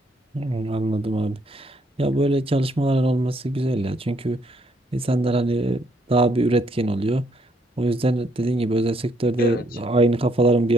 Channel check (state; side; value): normal; both; correlation 0.70